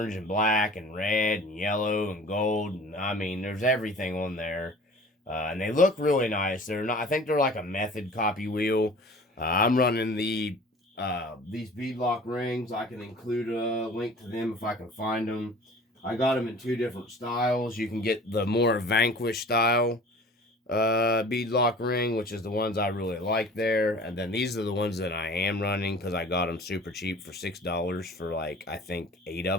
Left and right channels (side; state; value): both; normal; correlation 0.44